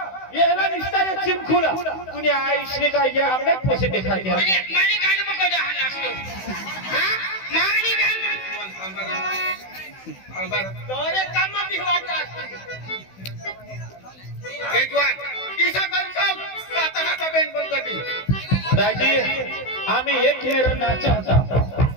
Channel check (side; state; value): right; late; 16 ms